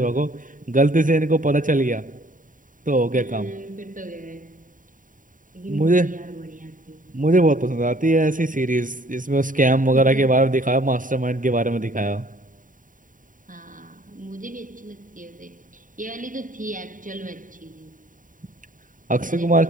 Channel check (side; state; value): left; late; 0.39 ms